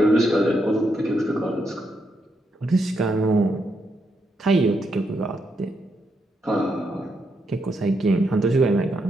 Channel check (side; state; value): both; normal; correlation 0.80